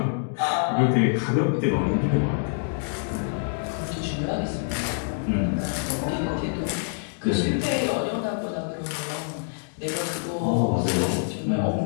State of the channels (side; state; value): right; silent; digital silence